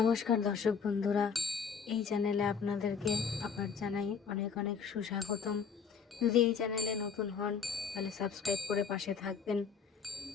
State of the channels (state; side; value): quieter; right; 6.1 dB